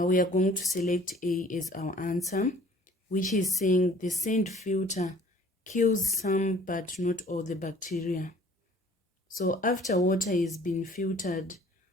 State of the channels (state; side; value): normal; both; correlation 0.52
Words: are going to select A as our answer, which is saying the sand filter kills some but not all the bacteria. So after water has been filtered,